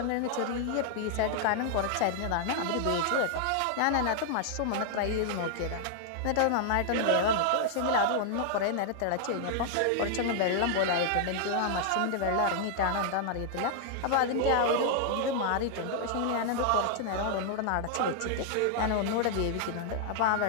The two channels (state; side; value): different; both; correlation 0.00